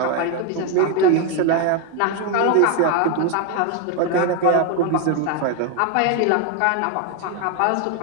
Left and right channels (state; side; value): different; both; correlation 0.01